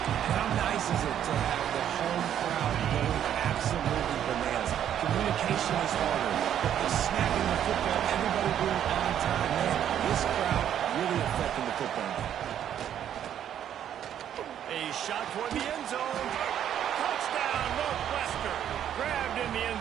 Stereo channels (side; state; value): left; quieter; 10.1 dB